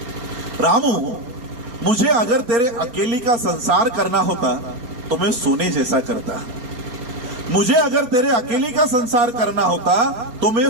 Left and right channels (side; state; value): left; late; 4.3 ms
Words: रामू, मुझे अगर तेरे अकेली का संसार करना होता तो मैं सोने जैसा करता, मुझे अगर तेरे अकेली का संसार करना होता तो मैं